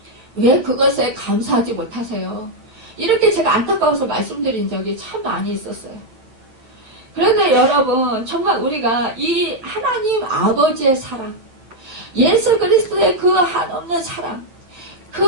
왜 그것에 감사하지 못하세요? 이렇게 제가 안타까워서 말씀드린 적이 참 많이 있었어요. 그런데 여러분, 정말 우리가 이 하나님 아버지의 사랑, 예수 그리스도의 그 한없는 사랑,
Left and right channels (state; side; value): late; left; 8.9 ms